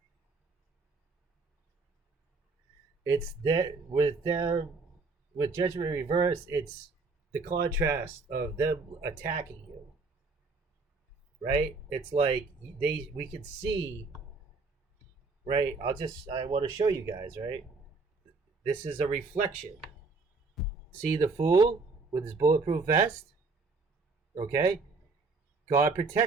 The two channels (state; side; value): quieter; left; 4.0 dB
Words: It's that with them, with Judgment Reverse, it's the contrast of them attacking you, right? It's like we can see, right? I want to show you guys, right? This is a reflection. See the fool with his bulletproof vest? Okay? God